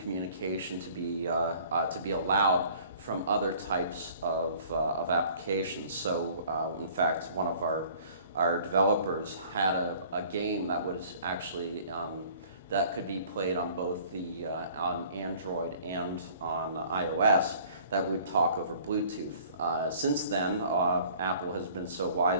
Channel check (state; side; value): inverted; both; correlation -0.52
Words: to be allowed from other types of applications. So, in fact, one of our developers had a game that was actually that could be played on both on Android and on iOS that would talk over Bluetooth. Since then, Apple has been so